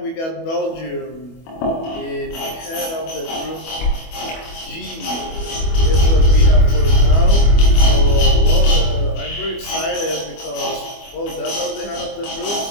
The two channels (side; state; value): right; late; 25 ms